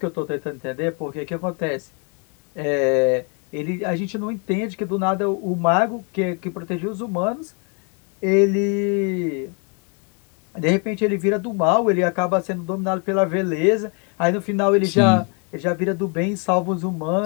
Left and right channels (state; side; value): quieter; right; 35.9 dB